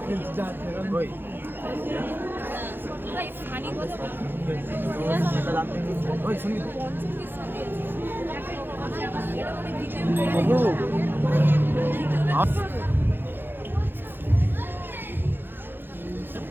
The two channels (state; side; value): late; left; 0.10 ms